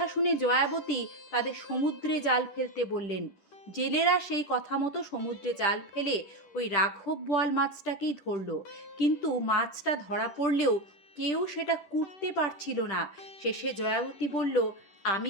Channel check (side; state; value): right; late; 10 ms